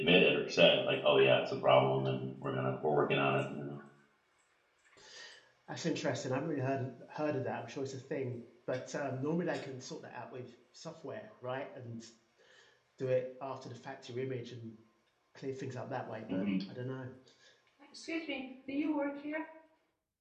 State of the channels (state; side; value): identical; both; correlation 1.00